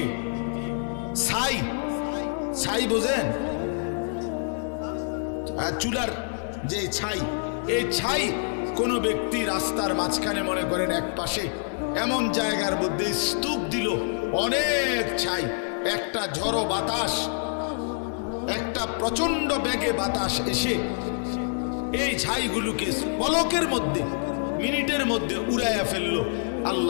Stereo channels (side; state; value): right; silent; 61 dB below the other